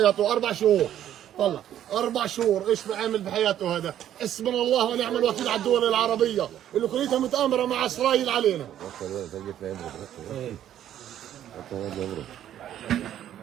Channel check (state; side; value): quieter; left; 11.2 dB